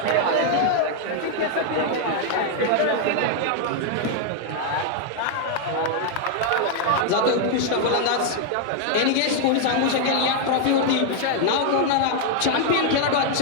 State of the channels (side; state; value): both; different; correlation 0.00